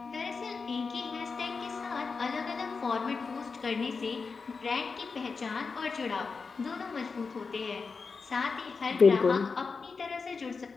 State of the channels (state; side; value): quieter; right; 4.8 dB